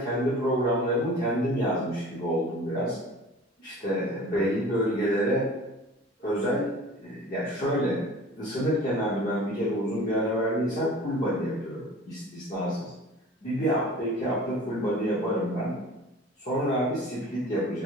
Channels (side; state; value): both; normal; correlation 0.43